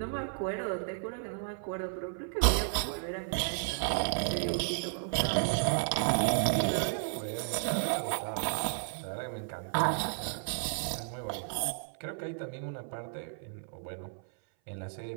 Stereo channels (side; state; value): left; silent; 56 dB below the other